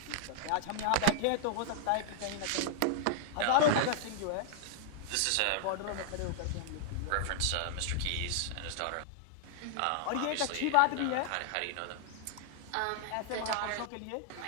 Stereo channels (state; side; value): different; both; correlation 0.00